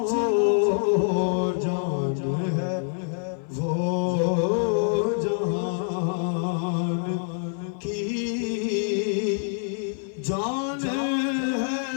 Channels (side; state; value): right; silent; 56 dB below the other